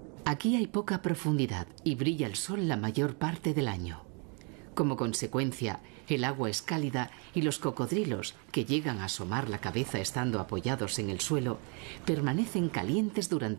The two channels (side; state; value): left; quieter; 35.9 dB